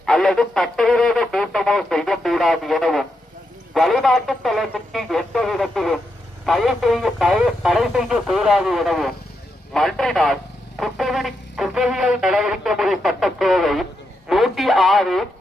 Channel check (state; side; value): normal; both; correlation 0.83